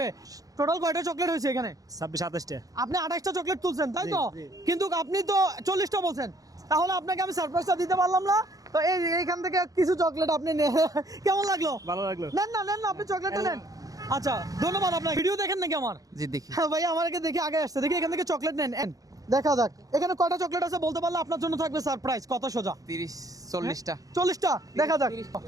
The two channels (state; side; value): late; left; 0.17 ms